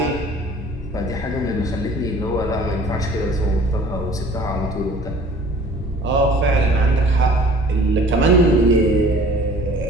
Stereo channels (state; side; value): normal; both; correlation 0.49